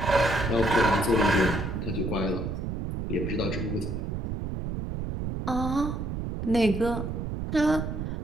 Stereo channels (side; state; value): right; noise; rumble, 4 dB below the sound